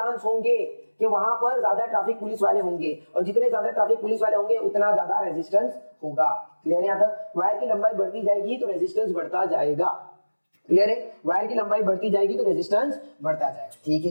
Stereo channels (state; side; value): inverted; both; correlation -1.00